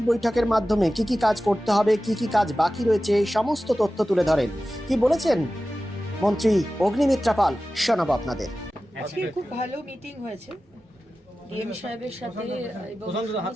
বৈঠকের মাধ্যমে কি কাজ করতে হবে, কি কাজ বাকি রয়েছে, সমস্ত তথ্য তুলে ধরেন। কি বলেছেন মন্ত্রী অগ্নিমিত্রা পাল, শোনাবো আপনাদের। আজকে খুব ভালো মিটিং হয়েছে ডিএম সাহেবের সাথে এবং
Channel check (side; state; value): both; normal; correlation 0.95